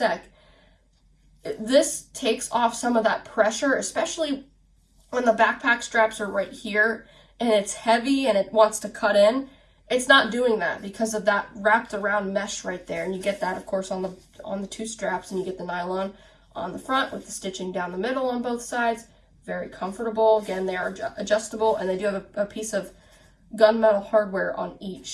This takes off some of that pressure, especially when the backpack straps are right here and it's heavy and it wants to cut in. It's not doing that because of that wrapped around mesh right there. And you get that, of course, on the 2 straps, and you get the nylon on the front with the stitching down the middle on both sides. Very comfortable. Again, they are adjustable, and they do have a piece of gunmetal hardware on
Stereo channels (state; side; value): identical; both; correlation 1.00